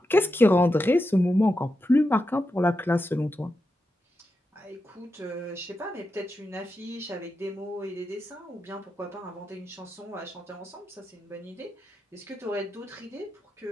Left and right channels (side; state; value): both; normal; correlation 0.88